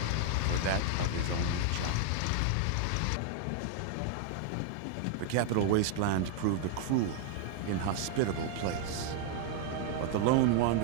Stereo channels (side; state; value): both; different; correlation 0.00